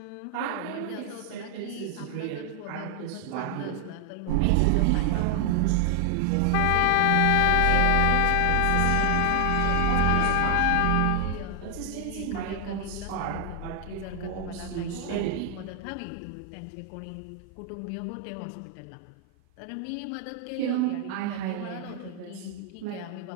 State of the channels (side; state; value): both; different; correlation 0.00